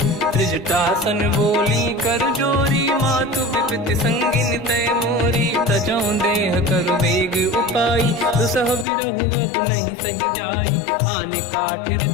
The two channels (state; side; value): drops out; right; at 8.8 s